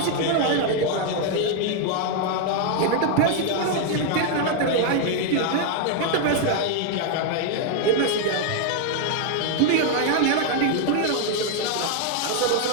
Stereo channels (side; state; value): both; different; correlation 0.00